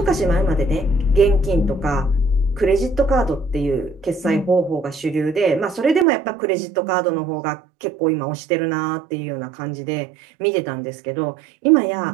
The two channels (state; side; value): drops out; left; at 6.1 s